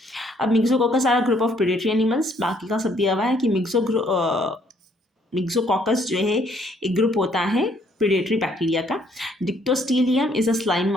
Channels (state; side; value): normal; both; correlation 0.66